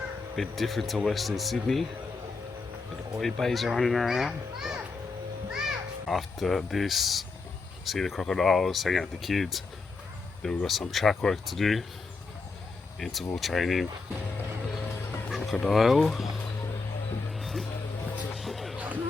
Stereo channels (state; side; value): quieter; right; 4.1 dB